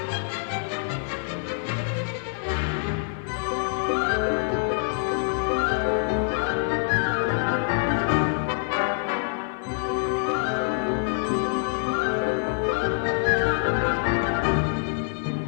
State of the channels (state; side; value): silent; right; 61 dB below the other